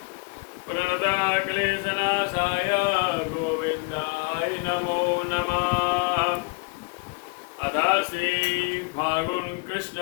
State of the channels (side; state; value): right; quieter; 31.4 dB